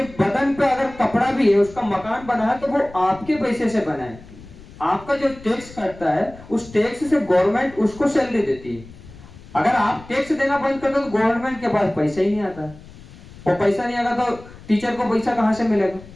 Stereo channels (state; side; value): noise; left; rumble, 19 dB below the sound